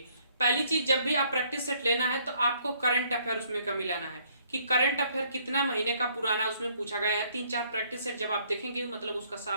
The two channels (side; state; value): both; inverted; correlation -0.65